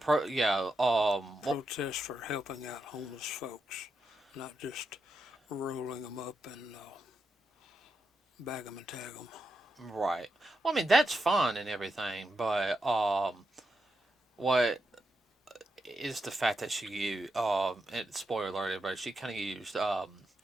for helping out homeless folks, not just rolling them up and bag them and tag them. right. Well, I mean that's fun and everything, but what is the fact that she used and spoiler alert, everybody, she kind of used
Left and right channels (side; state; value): both; normal; correlation 0.85